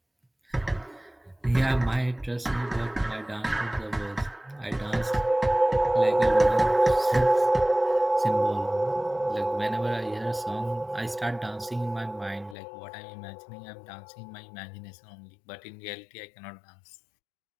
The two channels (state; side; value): drops out; right; at 12.6 s